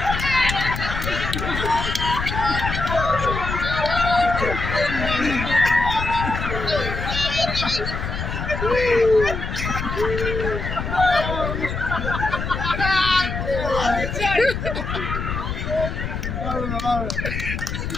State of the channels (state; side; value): noise; left; rumble, 4 dB below the sound